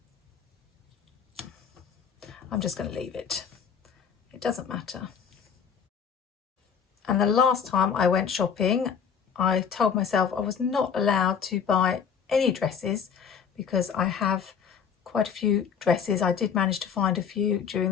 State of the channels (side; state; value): right; quieter; 7.0 dB